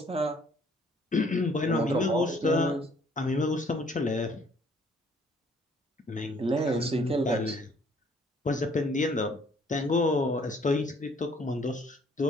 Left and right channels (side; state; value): both; normal; correlation 0.61